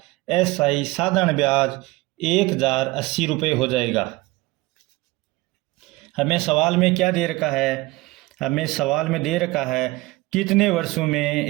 SI साधारण ब्याज 1,080 रुपये हो जाएगा। हमें सवाल में क्या दे रखा है? हमें सवाल में दे रखा है कितने वर्षों में,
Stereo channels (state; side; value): quieter; left; 20.9 dB